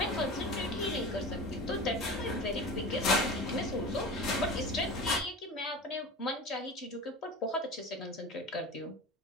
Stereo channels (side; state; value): both; normal; correlation 0.32